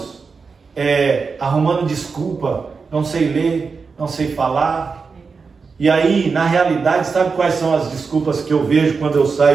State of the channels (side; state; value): left; quieter; 5.0 dB